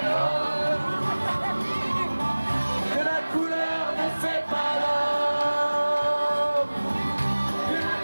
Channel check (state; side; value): inverted; both; correlation -1.00